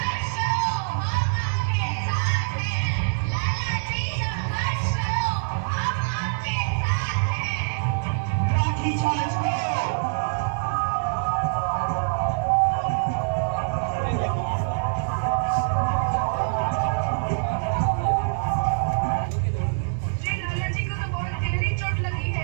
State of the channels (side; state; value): left; silent; 62 dB below the other